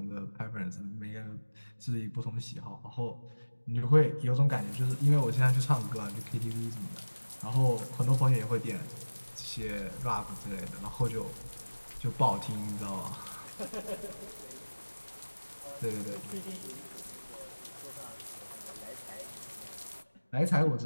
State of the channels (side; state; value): both; inverted; correlation -1.00